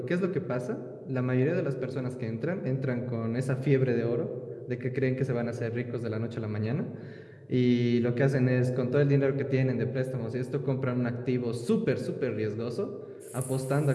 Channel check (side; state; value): both; identical; correlation 1.00